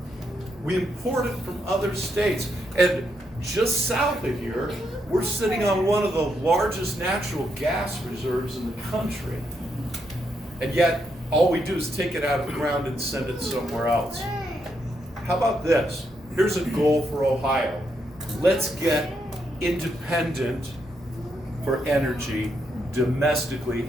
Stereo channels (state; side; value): normal; both; correlation 0.79